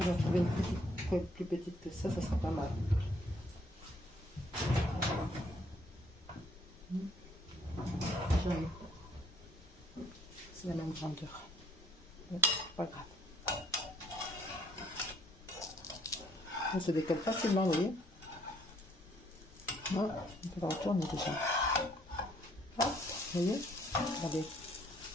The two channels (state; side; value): normal; both; correlation 0.64